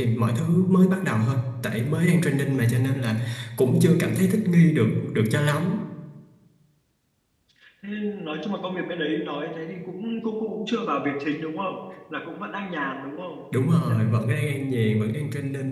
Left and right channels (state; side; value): identical; both; correlation 1.00